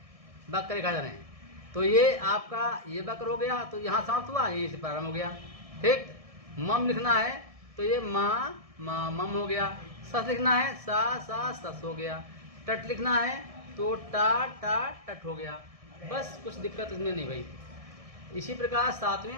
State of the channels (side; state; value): left; late; 1.6 ms